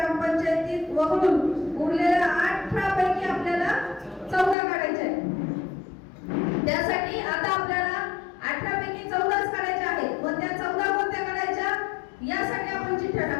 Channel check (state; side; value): drops out; right; at 4.5 s